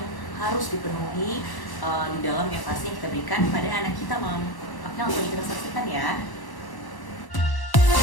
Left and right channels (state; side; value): late; right; 1.1 ms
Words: harus dipenuhi di dalam empasi yang kita berikan pada anak kita, mom. Oke, langsung kita saksikan ya.